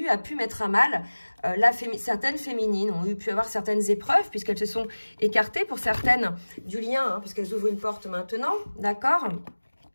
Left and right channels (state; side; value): inverted; both; correlation -1.00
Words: a pu mettre à mal certaines féminines ont pu avoir certaines épreuves, puisqu'elles se sont écartées pour certaines du lien, hein, puisqu'elles ouvrent une porte maintenant, d'accord?